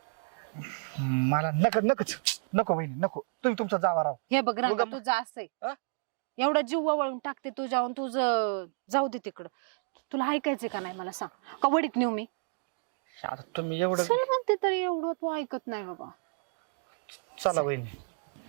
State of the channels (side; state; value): left; silent; 57 dB below the other